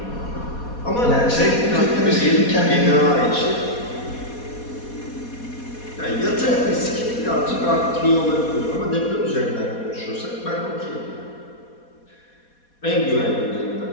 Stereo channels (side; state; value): right; late; 4.2 ms